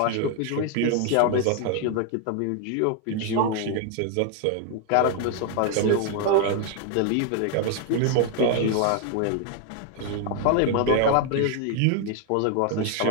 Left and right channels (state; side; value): different; both; correlation 0.00